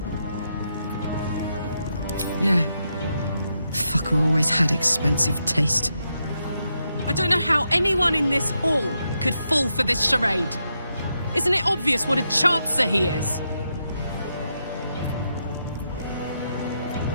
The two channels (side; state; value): both; inverted; correlation -0.83